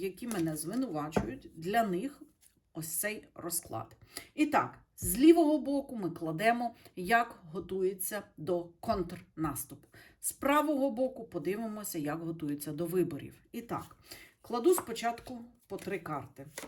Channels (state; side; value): identical; both; correlation 1.00